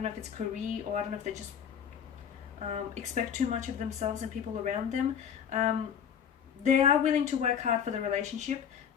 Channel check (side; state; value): right; quieter; 8.1 dB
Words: know if it's career, or I don't know if they just expect too much of themselves and people around them. They are willing to work hard for the relationship.